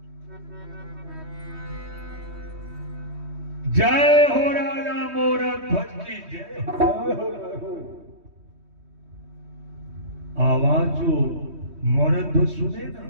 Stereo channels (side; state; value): left; late; 3.2 ms